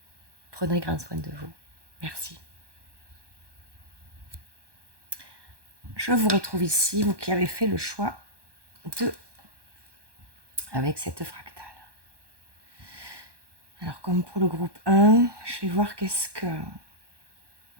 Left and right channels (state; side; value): late; left; 1.2 ms